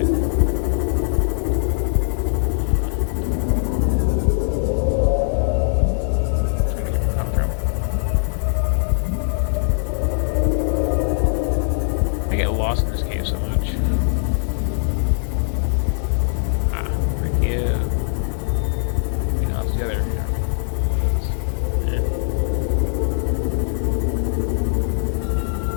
I get lost in this game so much.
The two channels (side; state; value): right; silent; digital silence